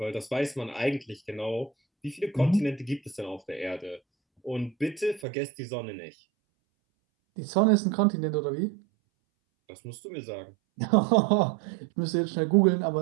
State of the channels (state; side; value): drops out; left; at 5.2 s